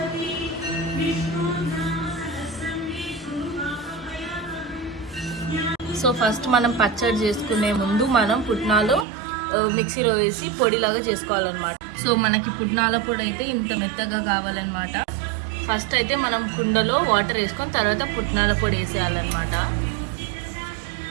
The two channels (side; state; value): left; drops out; at 9.1 s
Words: సో ఫస్ట్ మనం పచ్చడి చేసుకునే ముందు మనం పుట్నాలు మిక్సీలో వేసి పొడిలాగా చేసుకోవాలన్నమాట. సో మనకి పుట్నాల పొడి అయితే ఇంత మెత్తగా కావాలన్నమాట. ఫస్ట్ అయితే మనం కుండలో వాటర్ వేసుకొని తర్వాత పుట్నాల పొడి వేసేయాలన్నమాట.